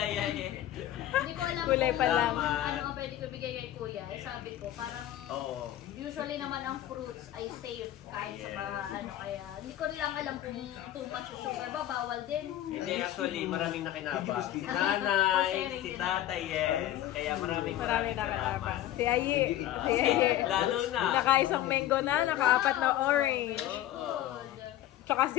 eh. Hindi ko alam Kulay kung pa lang. ano ang pwede ko bigay kay kuya. Eh, sabi ko, parang Oo. usually naman ang fruits ay safe kahit sa mga ano kaya. Hindi ko lang alam kung too much sugar ba, bawal din. Hindi, actually, maraming nakinabang. Si nanay, si tatay, yes. Kaya maraming Marami na salamat. kalabang. Si Ayi. Ah, Si Ayi. lalo na. Nakaisang mango na, nakaapat na orange. Oo. Tsaka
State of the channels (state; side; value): quieter; right; 13.1 dB